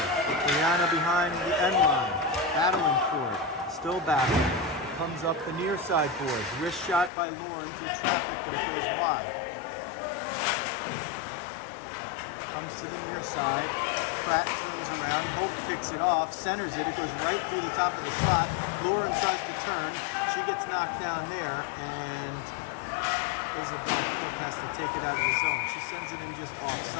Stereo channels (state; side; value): drops out; right; at 7.1 s